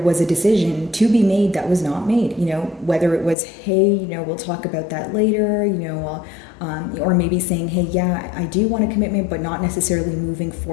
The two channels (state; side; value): drops out; right; at 3.4 s